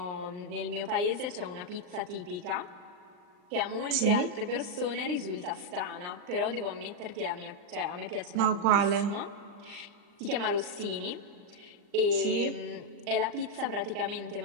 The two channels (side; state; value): left; late; 39 ms